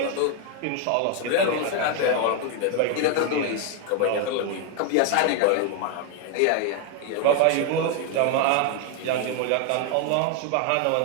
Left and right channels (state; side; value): different; both; correlation 0.01